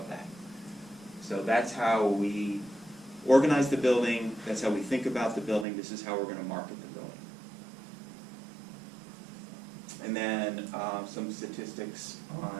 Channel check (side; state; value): left; drops out; at 5.7 s